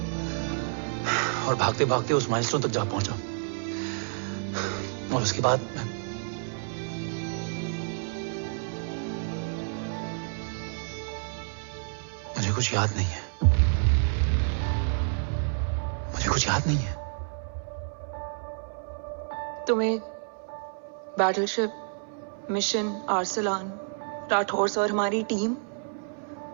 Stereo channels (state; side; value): silent; left; 59 dB below the other